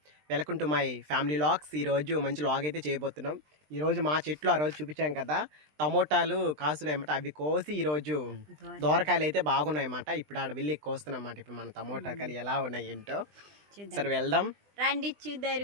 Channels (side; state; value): left; late; 20 ms